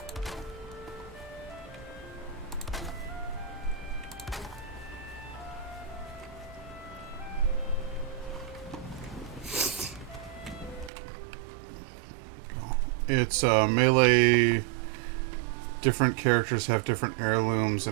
It's melee. Different characters have different heirlooms,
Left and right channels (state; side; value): drops out; left; at 10.9 s